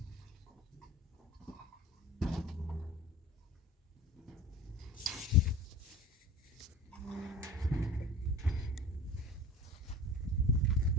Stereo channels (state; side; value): normal; both; correlation 0.38